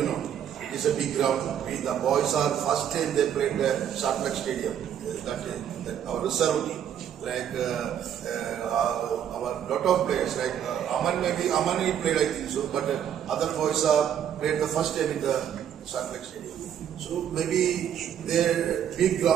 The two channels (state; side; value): quieter; left; 9.4 dB